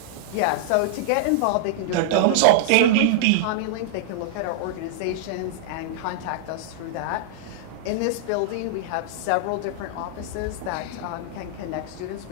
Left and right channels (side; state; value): both; different; correlation -0.01